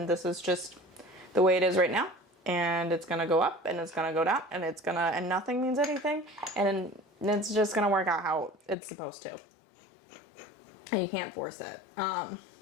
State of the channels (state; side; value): drops out; right; at 8.8 s